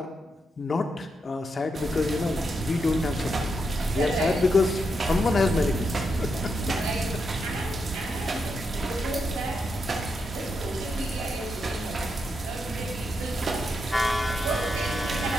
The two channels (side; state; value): both; normal; correlation 0.83